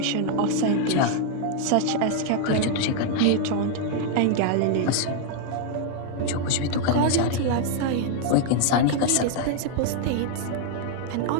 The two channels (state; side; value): different; both; correlation 0.00